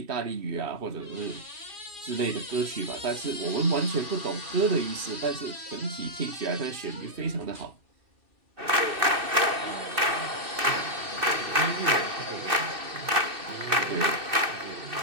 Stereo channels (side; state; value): left; late; 2.6 ms